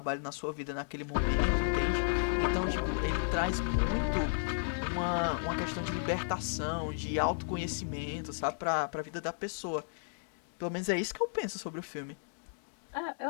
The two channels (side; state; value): right; silent; digital silence